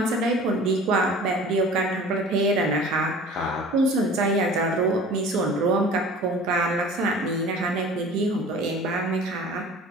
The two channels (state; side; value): normal; both; correlation 0.43